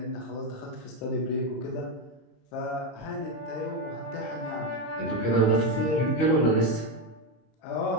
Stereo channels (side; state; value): right; late; 26 ms